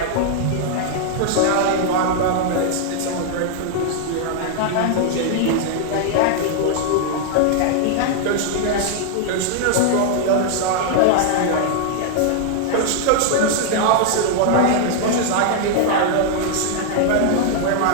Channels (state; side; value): different; both; correlation 0.00